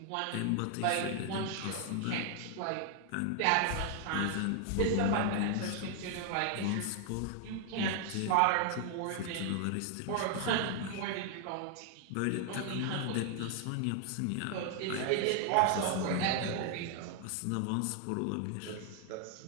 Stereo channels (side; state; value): both; different; correlation 0.00